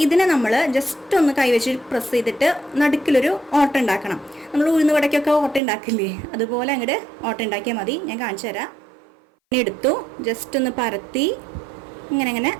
ഇതിനെ നമ്മൾ ജസ്റ്റ് ഒന്ന് കൈവച്ച് പ്രസ് ചെയ്തിട്ട് നടുക്കിലൊരു ഓട്ട ഉണ്ടാക്കണം. നമ്മൾ ഉഴുന്ന് വടക്കൊക്കെ ഓട്ട ഉണ്ടാക്കില്ലേ, അതുപോലെ അങ്ങോട്ട് ഓട്ട ഉണ്ടാക്കിയാൽ മതി. ഞാൻ കാണിച്ചു തരാം. ഇനി എടുത്തു ജസ്റ്റ് ഒന്ന് പരത്തി ഇങ്ങനെ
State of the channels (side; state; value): left; drops out; at 5.6 s